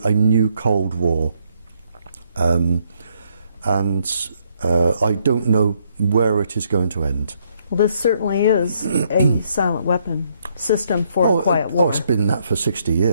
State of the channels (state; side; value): inverted; both; correlation -0.71